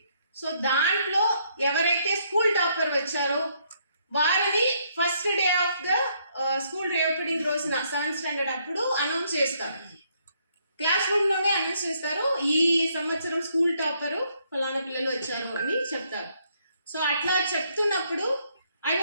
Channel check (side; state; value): both; inverted; correlation -0.71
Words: సో దాంట్లో ఎవరైతే స్కూల్ టాపర్ వచ్చారో వారిని first day of the school reopening రోజున 7th స్టాండర్డ్ అప్పుడు అనౌన్స్ చేస్తారు. క్లాస్ రూమ్లోనే అనౌన్స్ చేస్తారు, ఈ సంవత్సరం స్కూల్ టాపరు ఫలానా పిల్లలు వచ్చారు అని చెప్తారు. సో అట్లా చెప్తున్నప్పుడు I